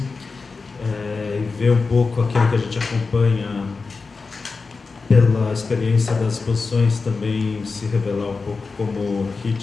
e ver um pouco aquilo que a gente acompanha pela experiência das exposições, também se revelar um pouco como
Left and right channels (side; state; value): right; quieter; 4.3 dB